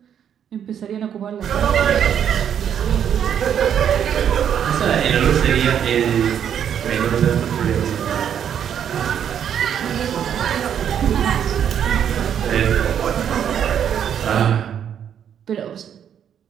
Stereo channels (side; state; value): left; quieter; 8.9 dB